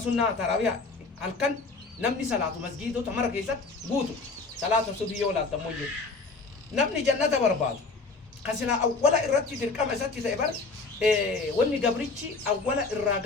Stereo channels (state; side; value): quieter; right; 4.0 dB